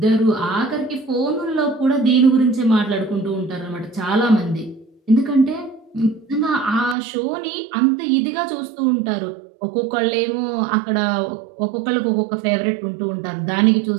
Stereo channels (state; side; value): drops out; left; at 7.0 s